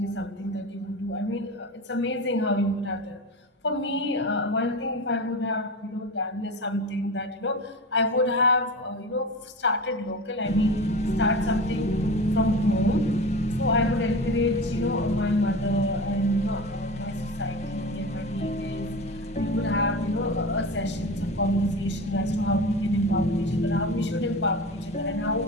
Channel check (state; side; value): normal; both; correlation 0.29